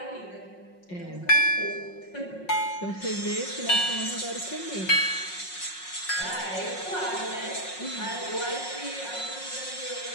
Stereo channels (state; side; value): late; right; 5.5 ms